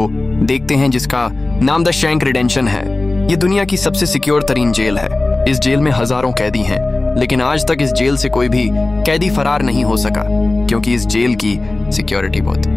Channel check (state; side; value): quieter; right; 3.0 dB